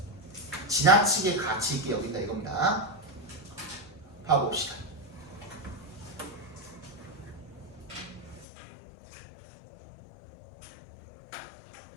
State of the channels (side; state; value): right; drops out; at 8.5 s